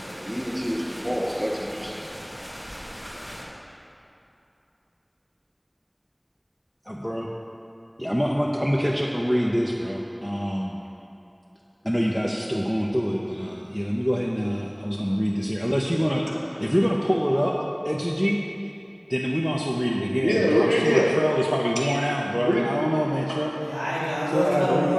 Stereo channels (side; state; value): both; identical; correlation 1.00